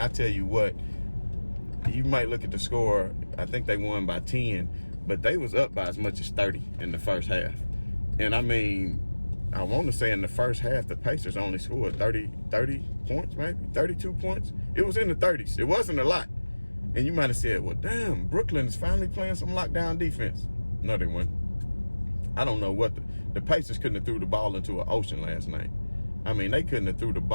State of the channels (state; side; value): inverted; both; correlation -1.00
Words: tell you what, you might look at the score. I think they won by 10, but they was up by as much as 30 in the first half. And, I mean, I want to say in the first half, the Pacers only scored 30 points, maybe 32 points. It was in the 30s. It wasn't a lot. And you might have said, well, damn, Brooklyn is finally playing some lockdown defense. No, they weren't. I don't know what the Pacers couldn't have threw the ball into an ocean last night. I mean, they couldn't have threw the